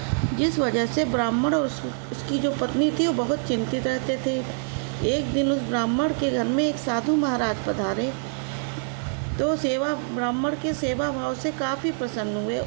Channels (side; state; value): left; silent; digital silence